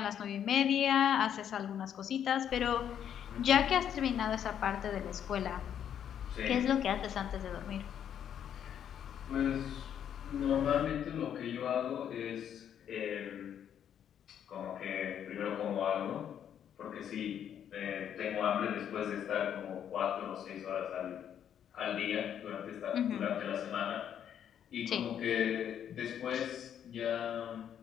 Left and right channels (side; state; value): right; quieter; 9.3 dB